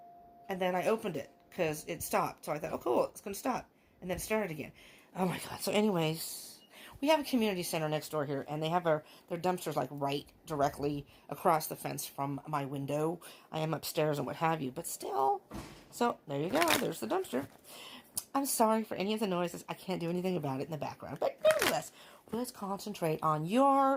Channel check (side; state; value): both; identical; correlation 1.00